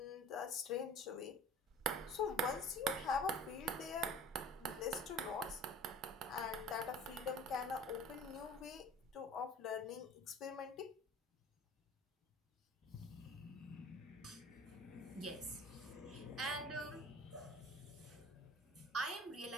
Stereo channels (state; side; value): normal; both; correlation 0.43